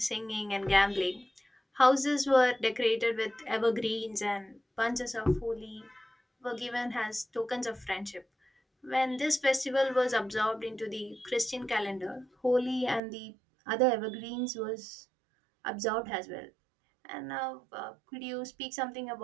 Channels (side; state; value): left; drops out; at 13.0 s